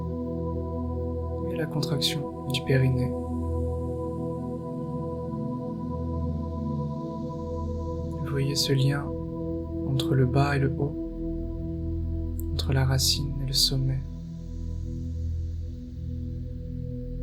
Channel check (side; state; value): both; identical; correlation 1.00